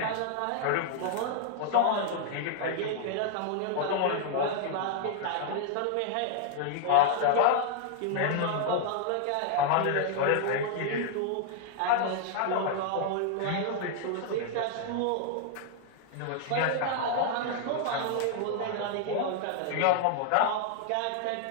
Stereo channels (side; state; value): both; different; correlation 0.00